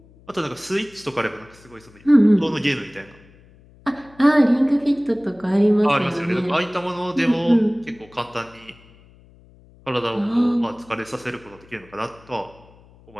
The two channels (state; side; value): noise; left; hum, 26 dB below the sound